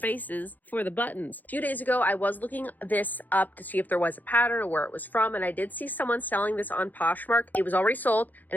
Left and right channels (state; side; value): late; right; 0.083 ms